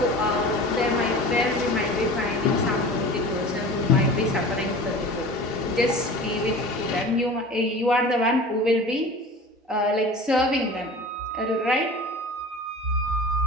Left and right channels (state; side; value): normal; both; correlation 0.37